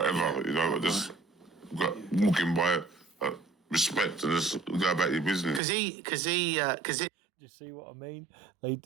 You know, I just got walking by, respect, and just go about your business. Because Do you see what I mean? They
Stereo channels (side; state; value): left; drops out; at 5.6 s